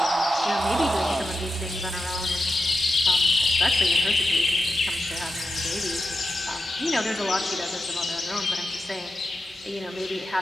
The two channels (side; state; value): both; normal; correlation 0.89